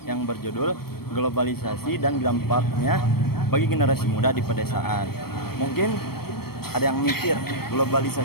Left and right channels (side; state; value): right; late; 0.95 ms